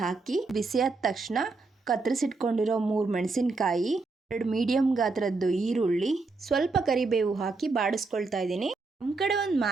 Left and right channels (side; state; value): left; quieter; 3.8 dB